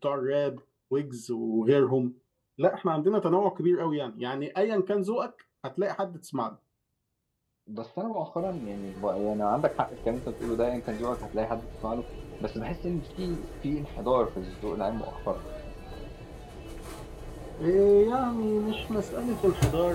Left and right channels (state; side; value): identical; both; correlation 1.00